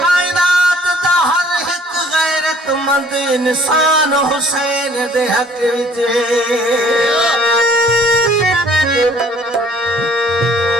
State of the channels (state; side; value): normal; both; correlation 0.56